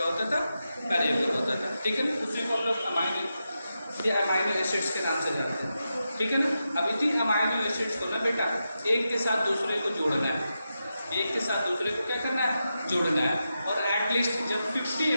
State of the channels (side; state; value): both; inverted; correlation -0.88